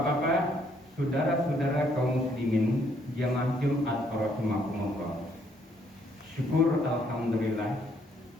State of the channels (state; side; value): normal; both; correlation 0.69